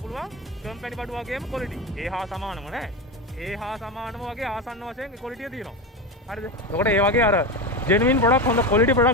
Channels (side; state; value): both; normal; correlation 0.18